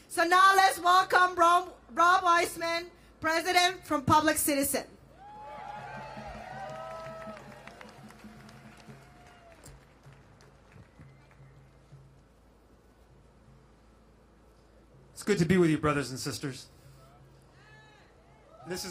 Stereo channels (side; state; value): both; identical; correlation 1.00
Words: So now let's welcome Rob Weissman, President from Public Citizen. It's good to be with you, brothers and sisters. This